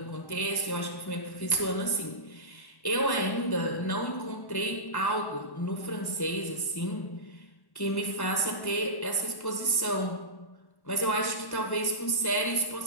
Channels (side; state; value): right; late; 1.1 ms